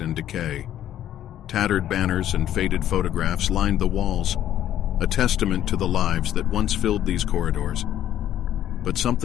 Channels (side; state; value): right; quieter; 11.6 dB